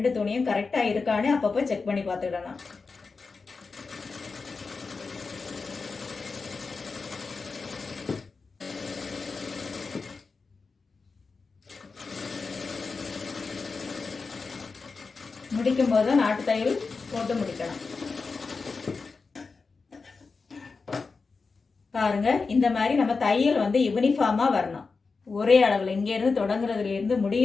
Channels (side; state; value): right; quieter; 4.4 dB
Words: துணியும் கரெக்டா இருக்கான்னு அப்பப்போ செக் பண்ணி பார்த்துக்கிடணும். முடிக்கும் போது நாட்டு தையல் போட்டு முடிக்கணும். பாருங்க, இந்த மாதிரி நம்ம தையல் வந்து யூனிஃபார்மா வரணும். ஒரே அளவுல, இங்க இருந்து தொடங்குறதுல இருந்து